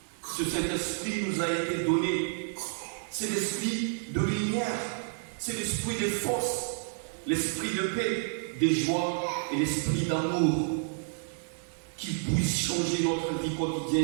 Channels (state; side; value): silent; left; digital silence